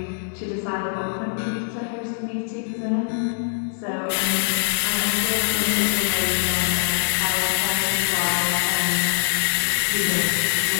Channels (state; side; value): silent; right; digital silence